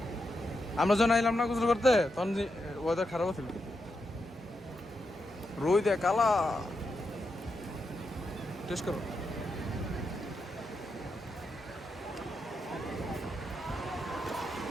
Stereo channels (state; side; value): normal; both; correlation 0.85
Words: আমরা যখন আইলাম না গোসল করতে তখন ওয়েদার খারাপ ছিল রোদ দেয় কালা টেস্ট করো